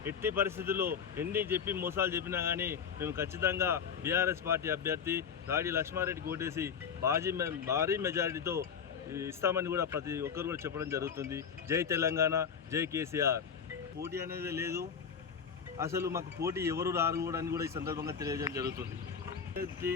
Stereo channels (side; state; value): right; quieter; 6.9 dB